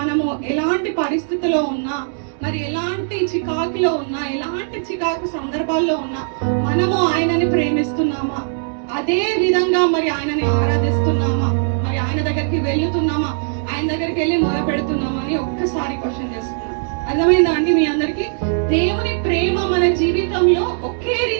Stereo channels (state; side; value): silent; left; digital silence